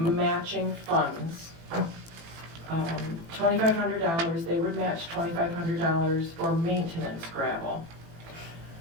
funds. $2,500, they would match $2,500 for maintenance gravel.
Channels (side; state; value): left; late; 18 ms